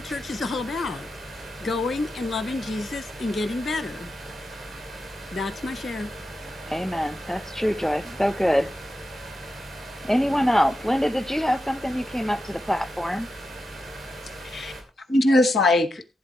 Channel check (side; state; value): both; normal; correlation 0.88